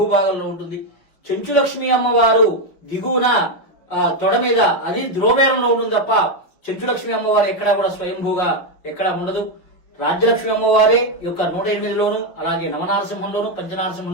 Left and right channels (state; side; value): late; right; 5.6 ms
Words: భాగంలో ఉంటుంది. చెంచులక్ష్మి అమ్మవారు దిగువన తొడ మీద అది ధ్రువబేరంలో ఉంటుంది తప్ప చెంచులక్ష్మి అమ్మవారు ఎక్కడా కూడా స్వయంభూగా ఎక్కడా ఉండదు. రాజ్యలక్ష్మి అమ్మవారే యొక్క 108లోను అలాగే నవనారసింహంలోను